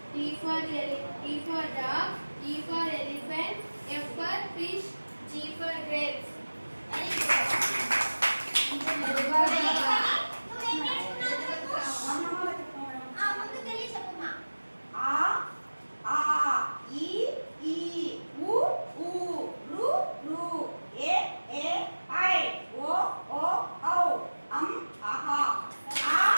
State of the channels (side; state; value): both; inverted; correlation -1.00